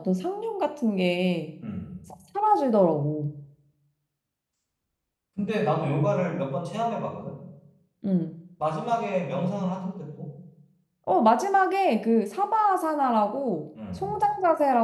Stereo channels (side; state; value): both; identical; correlation 1.00